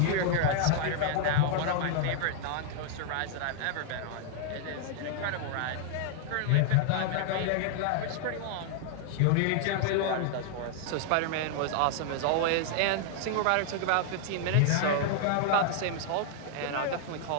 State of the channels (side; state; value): both; different; correlation 0.00